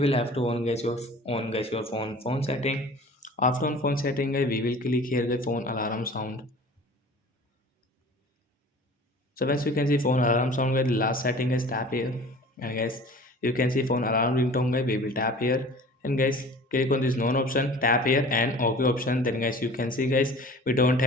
will have to on guys your phone setting. After on phone setting guys, we will click here the phone alarm sound. So once you can see phone alarm sound guys, the last setting is tap here, and guys you can see phone alarm ringtone guys, we will tap here, and guys click on this none option, tap here and OK option. Then guys you can see guys we don't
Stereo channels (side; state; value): both; normal; correlation 0.43